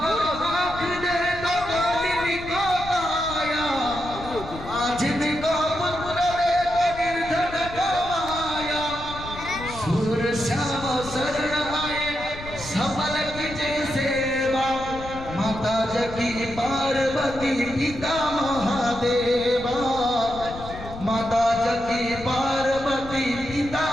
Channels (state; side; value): noise; left; rumble, 13 dB below the sound